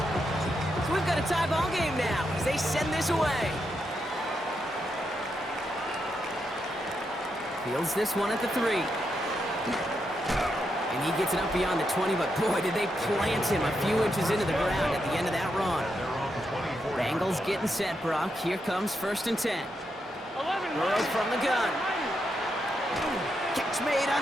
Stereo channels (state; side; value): normal; both; correlation 0.83